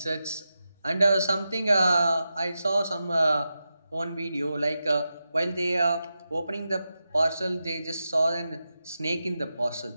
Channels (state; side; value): inverted; both; correlation -0.90